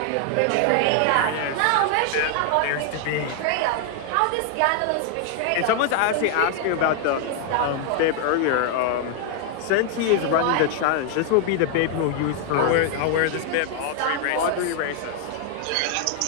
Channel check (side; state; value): both; different; correlation 0.00